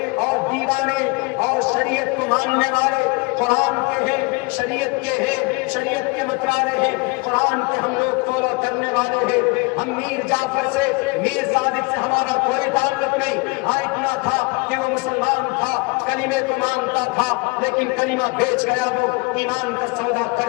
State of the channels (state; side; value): quieter; right; 28.9 dB